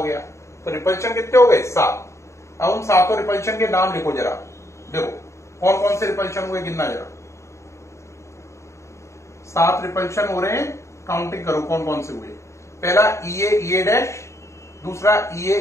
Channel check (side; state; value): right; late; 0.14 ms